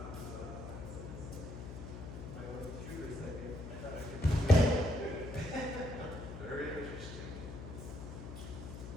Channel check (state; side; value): noise; left; hum, 9 dB below the sound